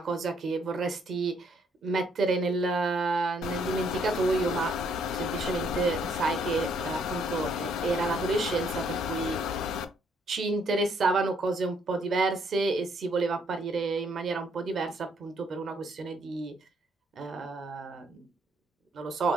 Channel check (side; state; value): both; normal; correlation 0.68